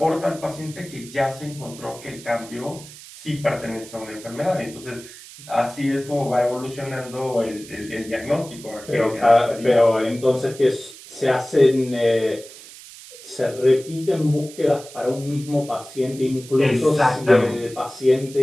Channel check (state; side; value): noise; right; hiss, 17 dB below the sound